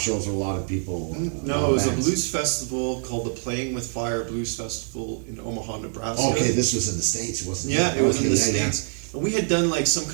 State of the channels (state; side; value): silent; left; 62 dB below the other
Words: shows where a lot of people? No, it was a blues festival called the Playing with Fire Blues Festival in Omaha, Nebraska. Okay, this was in the States, wasn't it? Yeah, it was in the States. And we had done like some